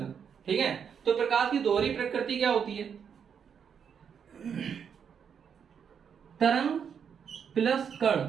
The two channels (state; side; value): quieter; left; 7.3 dB